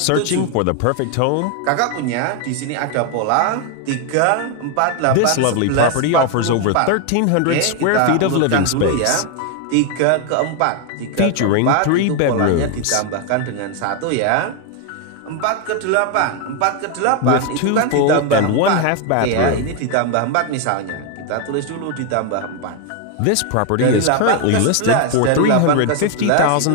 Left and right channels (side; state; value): both; different; correlation 0.01